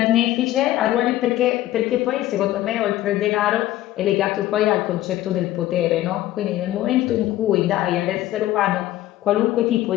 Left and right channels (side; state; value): right; quieter; 14.6 dB